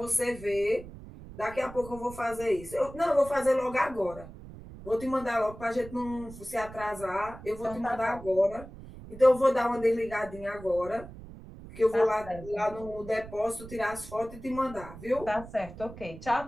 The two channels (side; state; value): right; noise; rumble, 15 dB below the sound